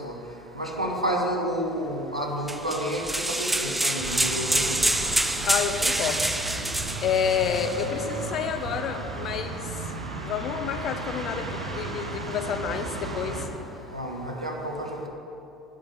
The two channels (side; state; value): both; normal; correlation 0.51